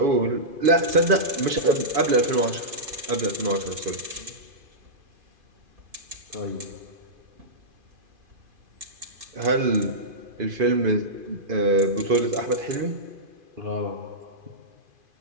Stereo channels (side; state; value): left; late; 2.5 ms